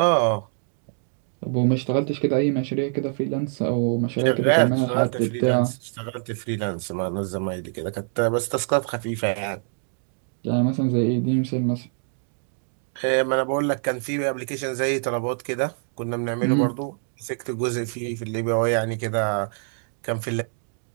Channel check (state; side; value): silent; left; digital silence